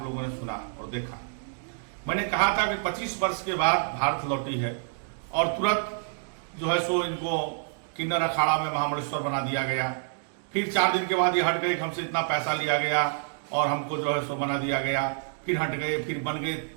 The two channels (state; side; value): silent; left; digital silence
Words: लोगों ने सुना और देखा। मैंने कहा था कि 25 वर्ष के बाद भारत लौटी है और तुरंत जो है सो इनको किन्नर अखाड़ा में महामंडलेश्वर बना दिया गया। फिर 4 दिन के बाद ये हट गए, हमसे इतना पैसा लिया गया और हमको जो है सो बना दिया गया। फिर हट गए, फिर बन गए,